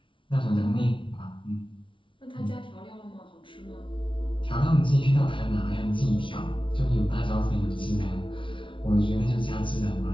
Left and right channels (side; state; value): right; late; 0.25 ms